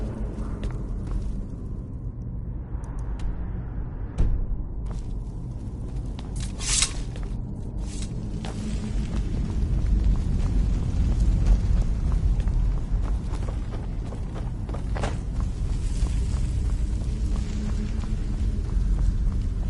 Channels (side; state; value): both; identical; correlation 1.00